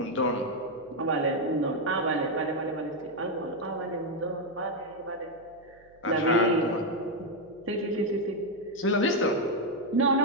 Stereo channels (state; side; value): noise; right; hum, 29 dB below the sound